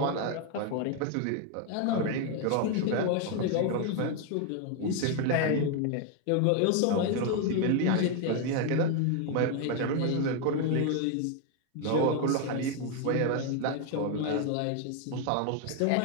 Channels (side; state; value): both; different; correlation 0.01